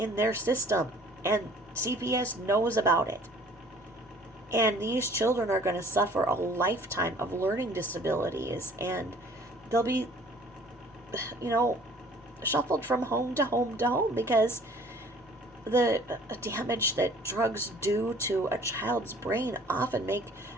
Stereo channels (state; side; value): normal; both; correlation 0.53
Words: their system, and CPS knows about it. And these children are going to suffer a lifetime of learning disabilities, and they'll be, shuffled from home to home to home, because the damage that drugs do to a child's brain often make